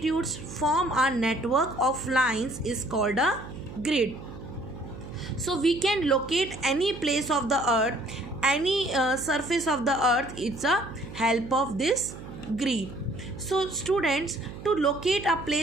form a network of lines is called a grid. So we can locate any place of the earth, any surface of the earth. It's a help of this grid. So students, to locate a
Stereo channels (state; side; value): noise; right; hum, 13 dB below the sound